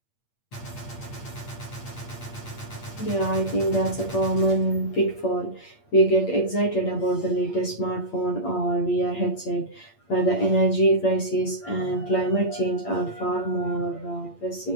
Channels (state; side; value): late; right; 8.7 ms